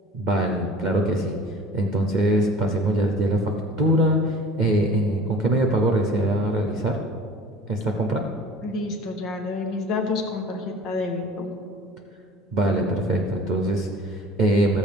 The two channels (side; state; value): both; normal; correlation 0.45